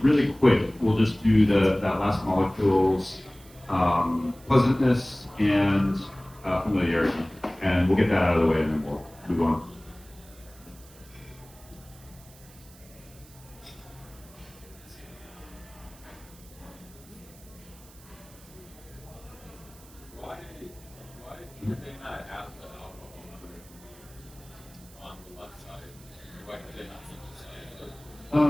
really quick. We'll just do that last molecule's pleasantness and familiarity, and we'll get that out of the way, and then we'll move on. Why did they not have the alcohol on the left side? Why did they not synthesize it?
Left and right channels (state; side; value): noise; right; hiss, 23 dB below the sound